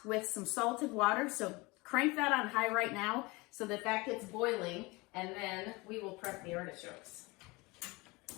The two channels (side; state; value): right; quieter; 24.4 dB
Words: with some salted water. So crank that on high right now so that that gets boiling, and then we will prep the artichokes.